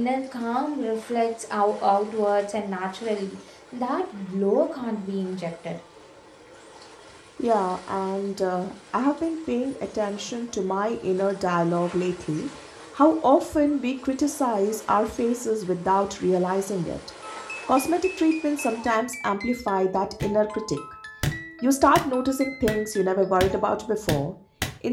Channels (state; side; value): identical; both; correlation 1.00